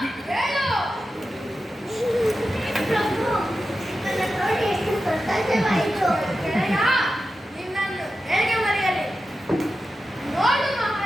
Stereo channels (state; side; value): normal; both; correlation 0.92